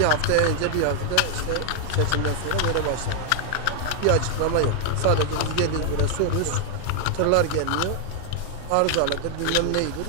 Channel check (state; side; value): different; both; correlation 0.00